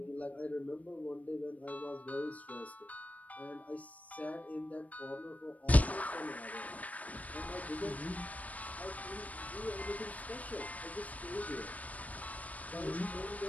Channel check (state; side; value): late; right; 0.071 ms